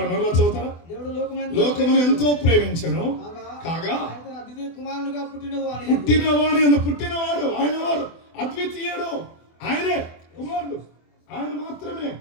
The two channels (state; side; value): late; right; 24 ms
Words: మరలా చదువుతారా? దేవుడు లోకమును ఎంతో ప్రేమించెను కాగా ఆయన అద్వితీయ కుమారునిగా పుట్టినవాడు ఆయన వారు అద్వితీయుడు, ఆయనే కుమారుడు, ఆయన మాత్రమే